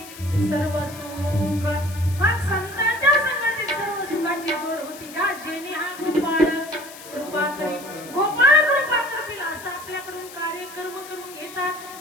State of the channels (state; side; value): noise; left; hiss, 16 dB below the sound